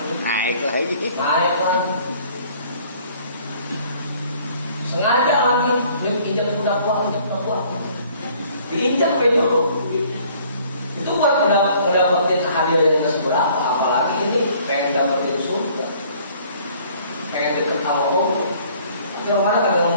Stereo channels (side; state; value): both; inverted; correlation -0.57